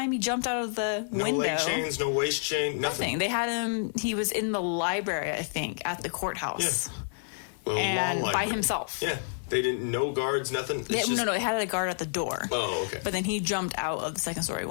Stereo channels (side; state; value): right; silent; digital silence